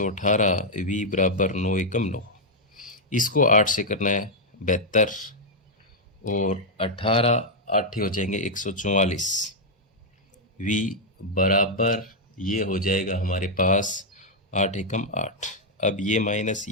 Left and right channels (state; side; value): normal; both; correlation -0.03